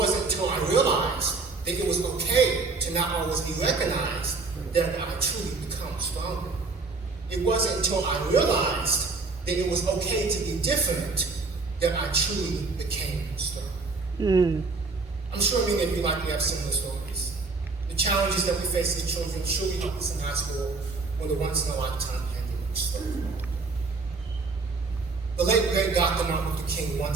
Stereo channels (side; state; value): left; quieter; 3.9 dB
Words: until I realized that it was okay to not always be recognized that I truly become stronger. It wasn't until I realized that it was okay to be different that I truly became strong. I'm sure many of you likely have similar stories. The challenges that we face as children surely help us in high school when the once-in-a-lifetime pandemic struck. The late great Dr. Martin Luther King